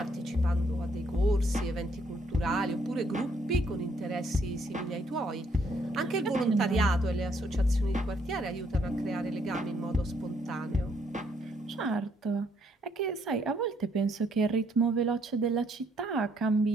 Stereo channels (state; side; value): normal; both; correlation 0.69